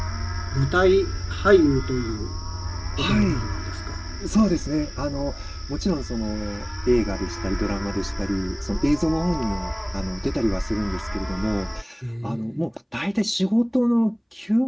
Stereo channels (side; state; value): both; identical; correlation 1.00